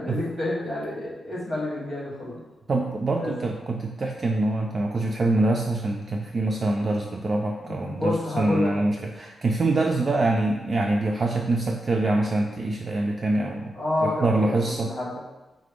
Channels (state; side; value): normal; both; correlation 0.86